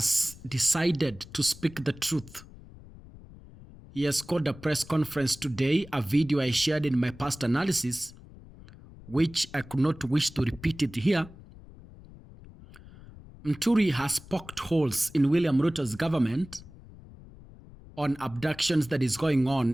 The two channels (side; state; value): left; noise; rumble, 19 dB below the sound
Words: decided to speak the truth. He has called a press conference today, a video I shared in my past analysis, which I could not wish to repeat it here. Muturi has poked holes in William Ruto's government on abductions that is going